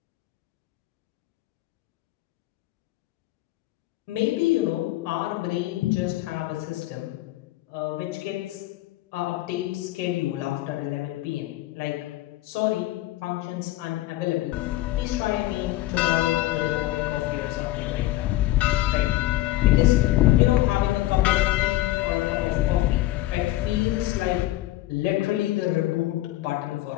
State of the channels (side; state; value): right; quieter; 16.2 dB